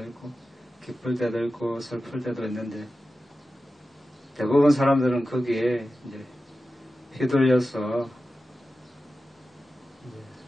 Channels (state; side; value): normal; both; correlation 0.93